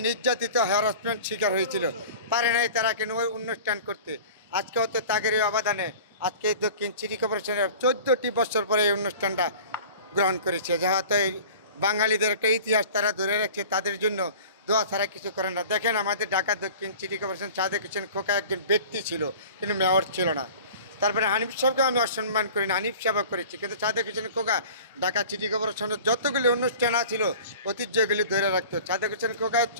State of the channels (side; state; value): both; inverted; correlation -0.41